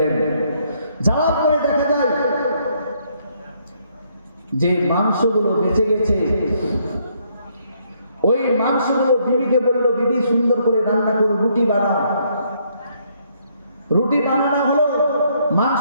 যাওয়ার পরে দেখা যায় যে মাংসগুলো বেঁচে গেছে, ওই মাংসগুলো বিবিকে বলল, বিবি সুন্দর করে রান্না করো, রুটি বানাও। রুটি বানানো হলো,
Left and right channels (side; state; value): both; inverted; correlation -0.70